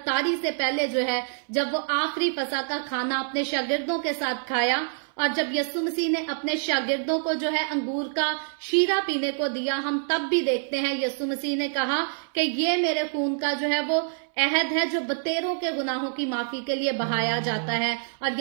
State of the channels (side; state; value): left; silent; 61 dB below the other